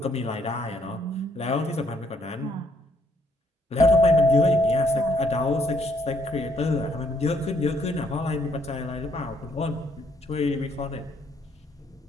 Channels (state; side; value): normal; both; correlation 0.70